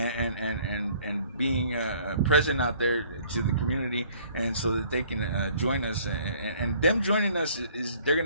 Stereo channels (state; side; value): inverted; both; correlation -0.57